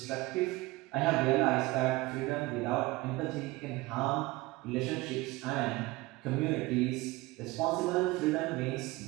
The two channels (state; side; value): quieter; left; 20.8 dB